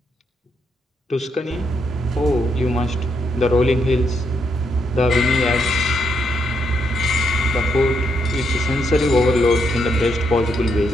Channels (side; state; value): both; normal; correlation 0.78